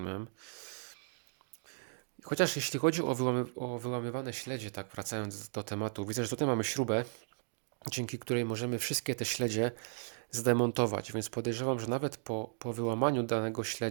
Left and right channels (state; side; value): silent; left; digital silence